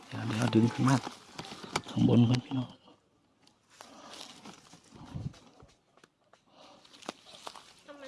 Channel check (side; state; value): both; identical; correlation 1.00